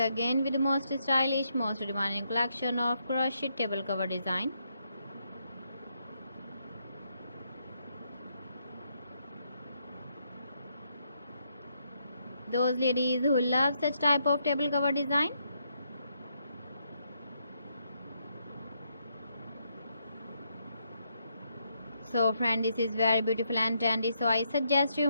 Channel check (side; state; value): both; inverted; correlation -0.78